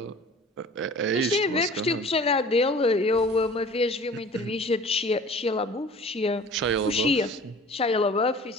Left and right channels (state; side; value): normal; both; correlation 0.45